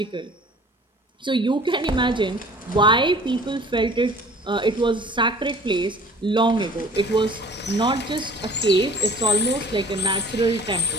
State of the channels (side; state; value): both; normal; correlation 0.48